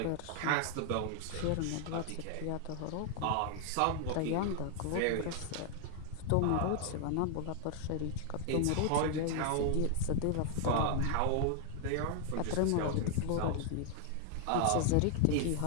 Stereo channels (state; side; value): different; both; correlation 0.00